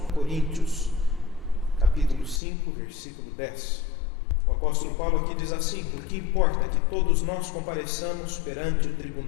Coríntios, capítulo 5, versículo 10. O apóstolo Paulo aqui diz assim: porque importa que todos nós compareçamos perante o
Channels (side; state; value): right; drops out; at 2.4 s